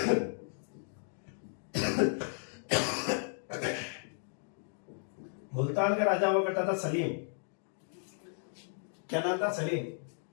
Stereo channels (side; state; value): right; silent; 55 dB below the other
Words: मुल्तान का राजा हुआ करता था सलीम। क्या नाम था, सलीम।